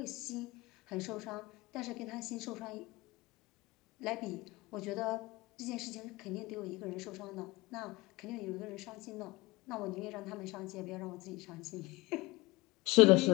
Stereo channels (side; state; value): right; quieter; 22.1 dB